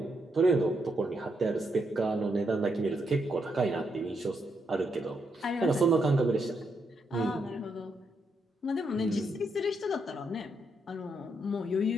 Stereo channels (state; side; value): normal; both; correlation 0.79